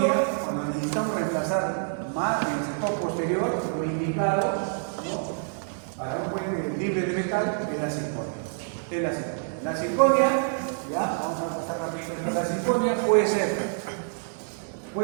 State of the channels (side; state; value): left; silent; digital silence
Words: cuando necesitamos reemplazar más en el sector posterior, lo indicado, ¿no? Para un puente libre de metal, es la circonia. Es la circonia. La circonia, ya, vamos a mostrar rápidamente, la circonia